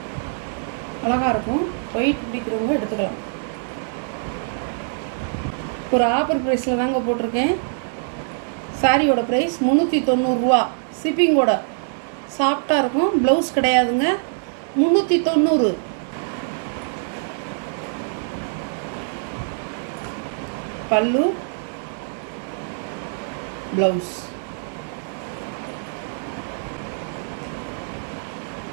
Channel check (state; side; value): silent; left; digital silence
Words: அழகாக இருக்கும். ஒயிட் பிடிக்கிறவங்க எடுத்துக்கலாம். ஒரு ஆஃபர் ப்ரைஸில் தாங்க போட்டிருக்கேன். சாரியோட ப்ரைஸ் 390 ரூபா. ஷிப்பிங்கோட சாஃப்டாக இருக்கும். ப்ளவுஸ் கிடையாதுங்க. 390. பல்லு, ப்ளவுஸ்.